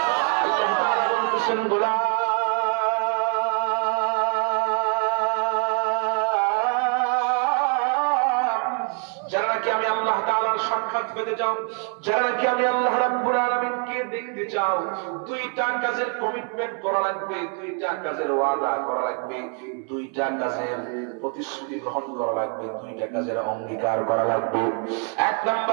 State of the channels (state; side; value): quieter; left; 39.1 dB